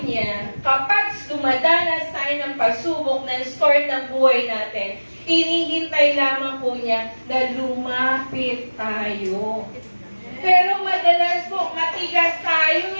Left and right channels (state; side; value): inverted; both; correlation -1.00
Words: niya kapag dumadanas tayo ng pagsubok ng storm ng buhay natin, hinihintay lamang po niya na lumapit tayo. Pero madalas po, matigas tayo